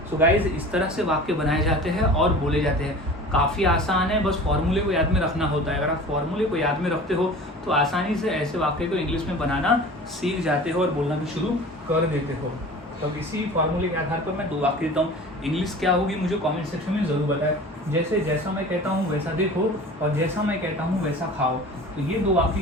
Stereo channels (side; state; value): both; normal; correlation 0.40